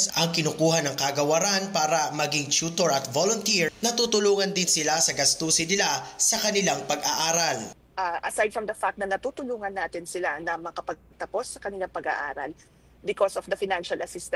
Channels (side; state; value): both; identical; correlation 1.00